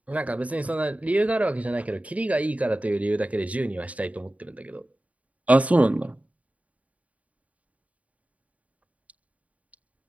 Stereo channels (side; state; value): left; late; 0.069 ms